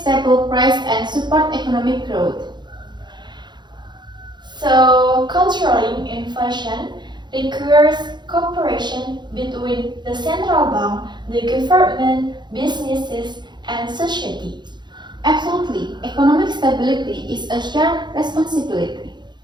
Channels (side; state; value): left; late; 0.21 ms